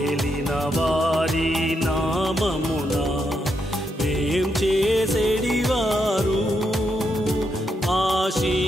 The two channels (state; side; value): normal; both; correlation 0.81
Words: వారి నామమున వేం చేసేడివారు